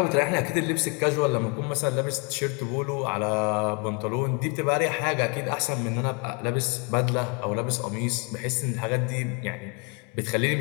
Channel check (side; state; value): right; quieter; 32.2 dB